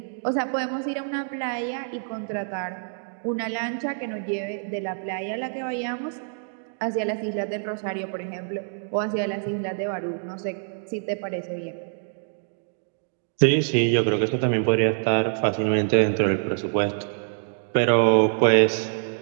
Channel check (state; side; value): silent; left; digital silence